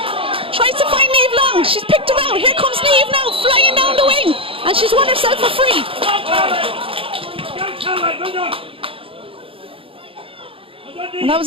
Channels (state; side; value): late; left; 0.26 ms